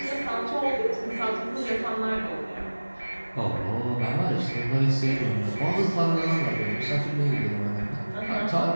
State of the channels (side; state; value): both; inverted; correlation -1.00